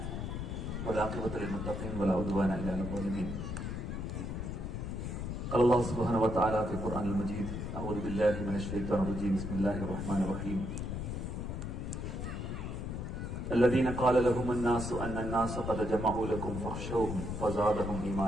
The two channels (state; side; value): noise; left; rumble, 4 dB below the sound